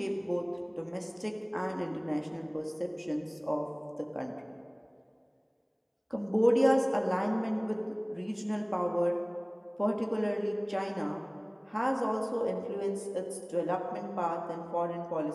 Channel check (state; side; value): identical; both; correlation 1.00